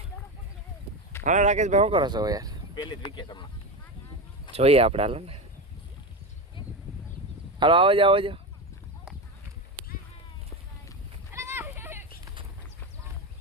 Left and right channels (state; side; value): normal; both; correlation 0.19